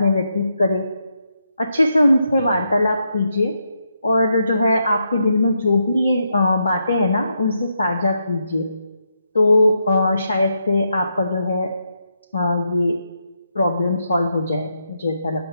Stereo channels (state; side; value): inverted; both; correlation -0.81